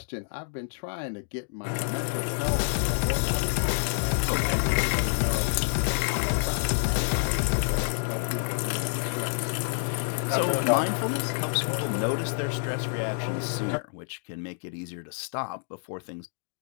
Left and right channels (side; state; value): right; silent; digital silence